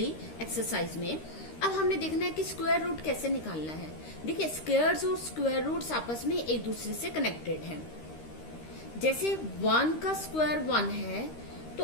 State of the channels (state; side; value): late; right; 13 ms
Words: एक्सरसाइज में. अब हमने देखना है कि स्क्वायर रूट कैसे निकालना है. देखिए स्क्वायर्स और स्क्वायर रूट्स आपस में एक दूसरे से कनेक्टेड हैं. जैसे 1 का स्क्वायर 1 है, तो